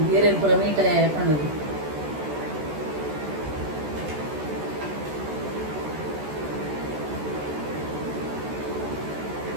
ಏರೇನು ಪೂರ ಮೀಟ್ ಆಯ ಪಂಡದು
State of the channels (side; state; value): left; late; 14 ms